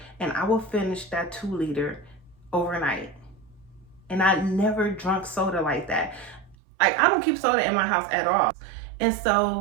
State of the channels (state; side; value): drops out; left; at 6.6 s